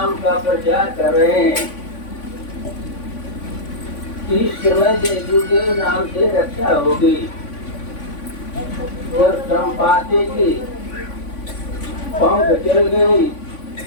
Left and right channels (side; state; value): right; late; 3.5 ms